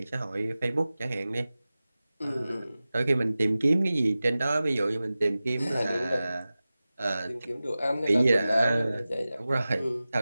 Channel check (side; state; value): both; inverted; correlation -0.96